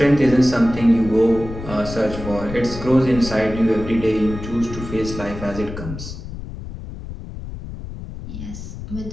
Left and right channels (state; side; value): noise; left; rumble, 10 dB below the sound